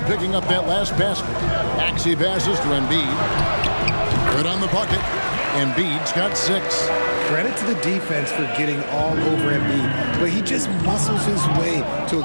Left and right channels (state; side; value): inverted; both; correlation -1.00